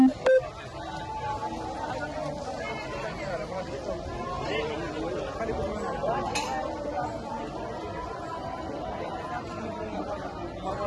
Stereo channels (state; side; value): identical; both; correlation 1.00